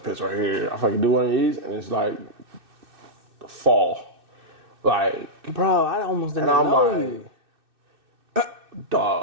right here. If I can do one of these, and it's like the fall. Like, bro, I almost didn't know you.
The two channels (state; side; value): late; left; 2.6 ms